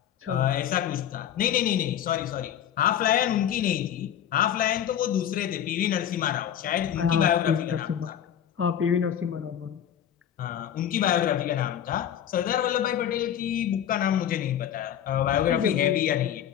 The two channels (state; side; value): quieter; right; 10.0 dB